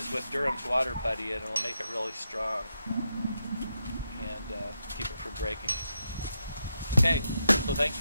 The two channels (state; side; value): inverted; both; correlation -0.84